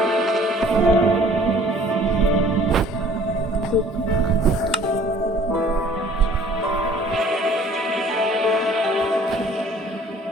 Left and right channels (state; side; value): normal; both; correlation 0.53